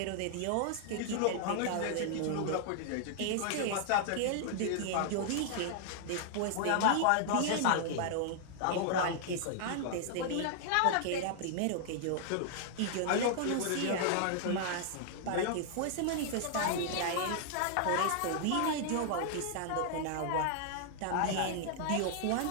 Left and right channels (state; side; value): different; both; correlation -0.01